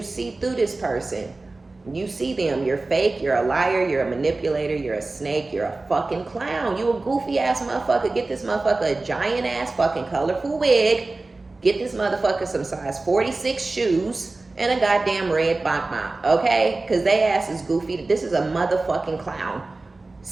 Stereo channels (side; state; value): left; quieter; 3.3 dB